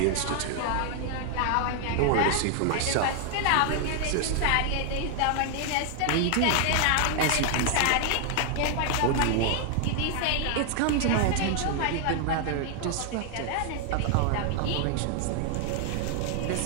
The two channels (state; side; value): different; both; correlation 0.00